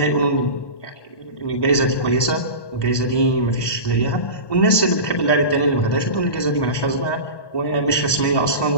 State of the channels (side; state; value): right; late; 1.2 ms